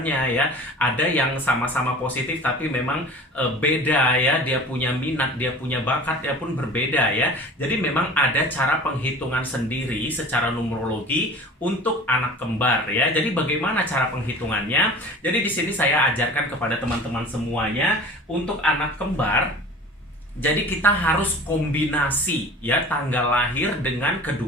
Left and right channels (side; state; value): both; normal; correlation 0.41